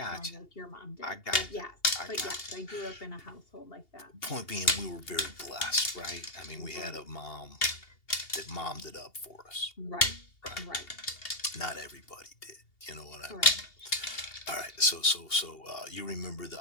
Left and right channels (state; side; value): late; right; 2.8 ms